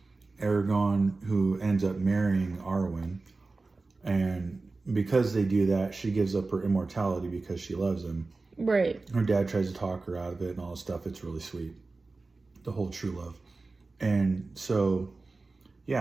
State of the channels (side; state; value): left; quieter; 3.6 dB